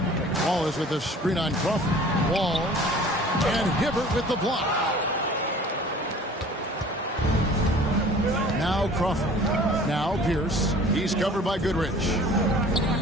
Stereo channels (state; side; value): normal; both; correlation 0.47